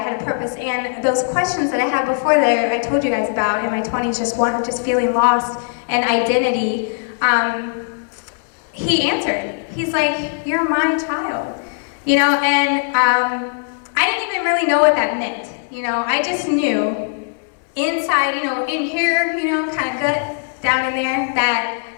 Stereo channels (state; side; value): silent; right; digital silence